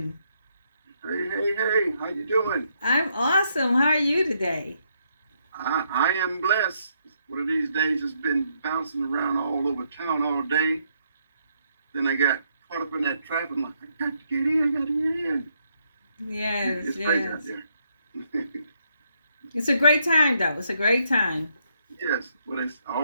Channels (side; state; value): both; inverted; correlation -0.75